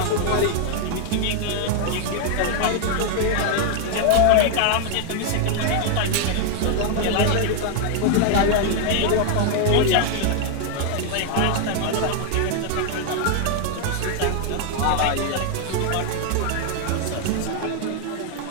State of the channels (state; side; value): different; both; correlation 0.00